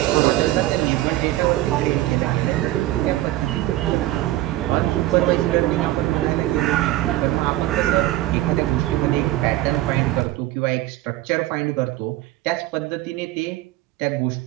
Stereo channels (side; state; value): left; quieter; 15.9 dB